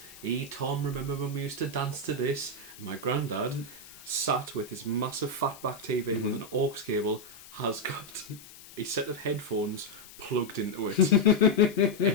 Tom, remember when we used to dance to this? And my granddad sat with his massive fatback TV with an aux cable, has got a set of headphones plugged into it.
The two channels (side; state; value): left; noise; hiss, 19 dB below the sound